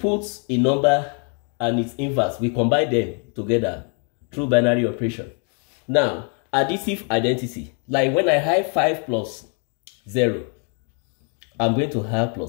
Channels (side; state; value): right; quieter; 39.9 dB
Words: a number and its inverse. We combine them together through binary operation. Now, additive identity, like when I have 5 plus 0, I'm going to have